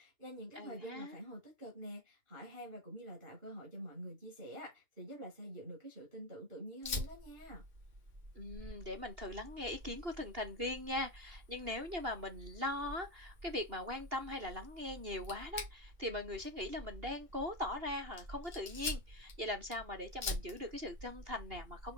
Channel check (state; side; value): late; left; 2.8 ms